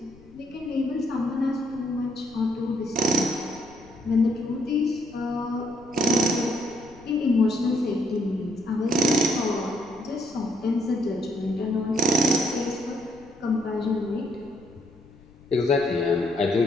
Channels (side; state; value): left; noise; rumble, 24 dB below the sound